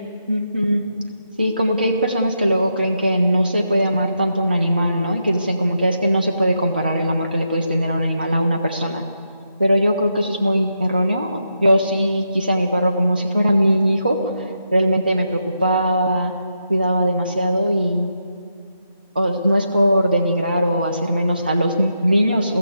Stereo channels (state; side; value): inverted; both; correlation -0.83